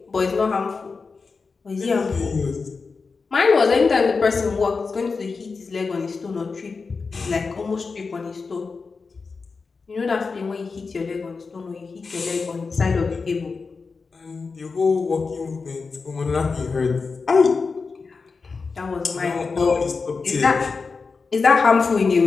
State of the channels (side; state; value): right; quieter; 4.6 dB